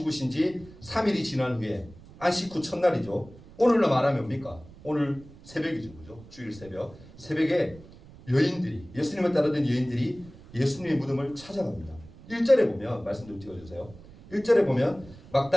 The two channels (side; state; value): right; noise; rumble, 20 dB below the sound